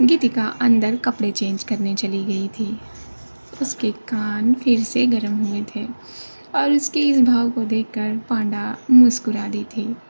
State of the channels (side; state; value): both; inverted; correlation -1.00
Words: गीतिका अंदर कपड़े चेंज करने चली गई थी। उसके कान फिर से गर्म हुए थे और उसके इस भाव को देखकर पांडा मुस्कुरा दी थी।